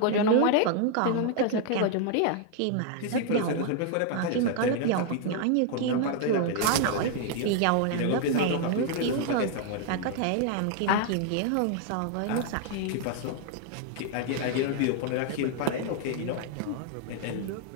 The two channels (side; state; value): both; different; correlation 0.00